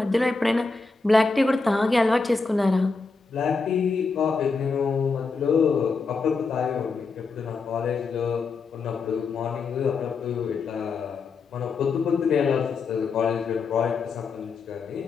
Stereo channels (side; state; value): right; quieter; 4.4 dB